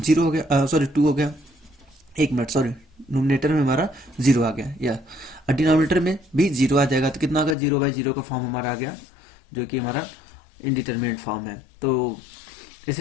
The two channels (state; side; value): drops out; right; at 7.6 s